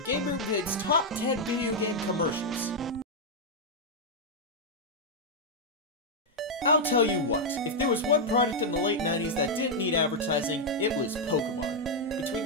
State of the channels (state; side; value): normal; both; correlation -0.02